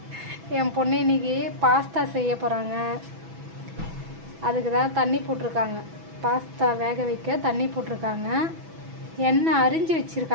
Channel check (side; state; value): left; late; 6.1 ms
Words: என் பொண்ணு இன்றைக்கி பாஸ்தா செய்ய போகிறாங்க. அதுக்கு தான் தண்ணி போட்டிருக்காங்க. பாஸ்தா வேக வைக்க தண்ணி போட்டிருக்காங்க. எண்ணெய் அரிஞ்சு